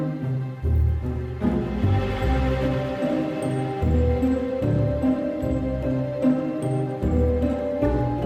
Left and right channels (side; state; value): both; identical; correlation 1.00